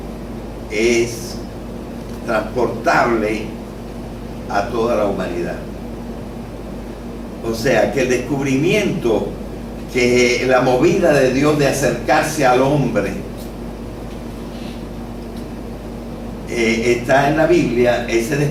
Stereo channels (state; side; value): identical; both; correlation 1.00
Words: es transportable a toda la humanidad. O sea, que el descubrimiento, que la movida de Dios de acercarse al hombre está en la Biblia. Ese